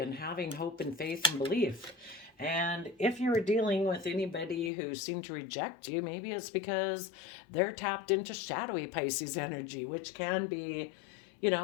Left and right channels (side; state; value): right; drops out; at 4.7 s